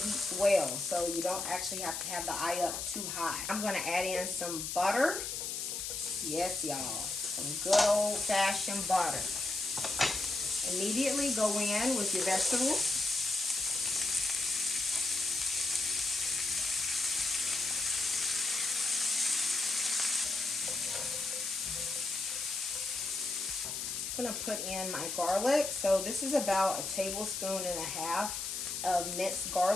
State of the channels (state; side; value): noise; left; hiss, 4 dB below the sound